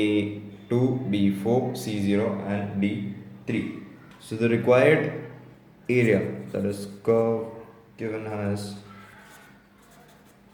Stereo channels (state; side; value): identical; both; correlation 1.00